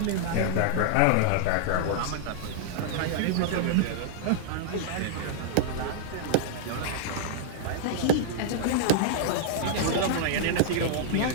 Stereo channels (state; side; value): different; both; correlation -0.01